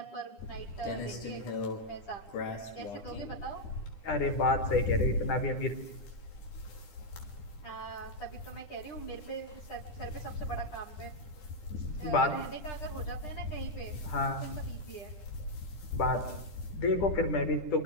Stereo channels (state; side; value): late; right; 10 ms